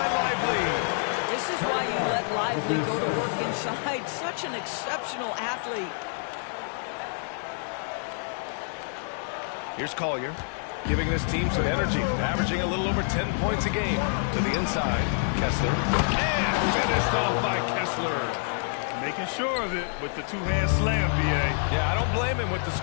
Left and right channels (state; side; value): silent; right; 55 dB below the other